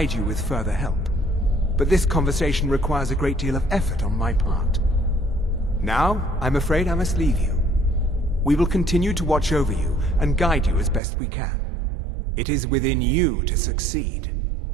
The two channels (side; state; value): left; drops out; at 11.0 s